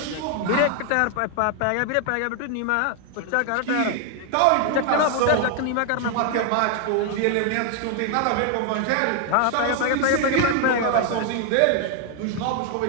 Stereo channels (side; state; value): both; different; correlation 0.00